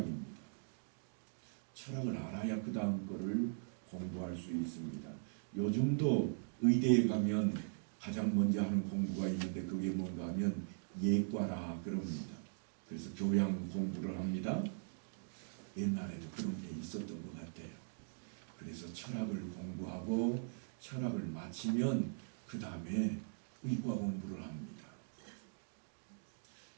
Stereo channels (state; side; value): silent; left; digital silence